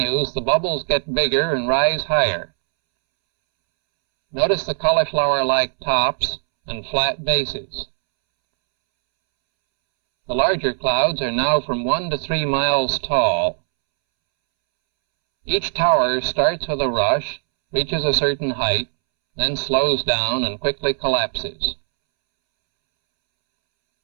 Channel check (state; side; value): silent; left; 66 dB below the other